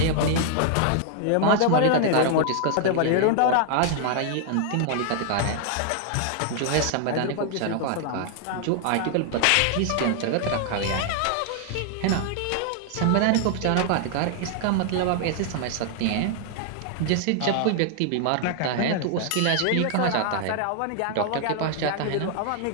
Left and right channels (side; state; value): both; different; correlation 0.00